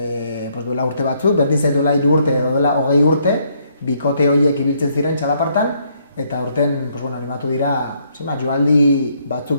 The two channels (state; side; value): inverted; both; correlation -0.70